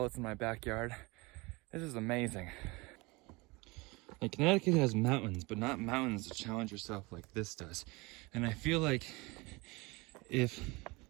this in my backyard. This is amazing. And Connecticut has mountains, but not mountains to challenge yourself like this does. And I feel like if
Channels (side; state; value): left; quieter; 24.9 dB